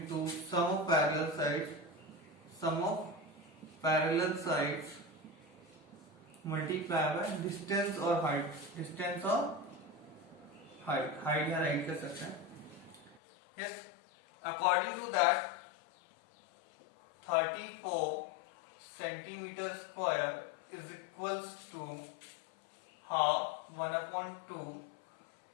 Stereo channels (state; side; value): drops out; right; at 13.2 s